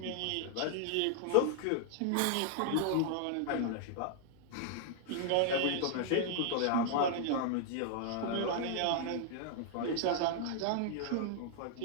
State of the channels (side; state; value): both; different; correlation 0.00